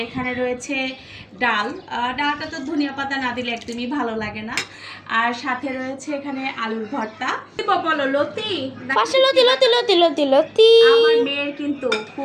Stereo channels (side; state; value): both; identical; correlation 1.00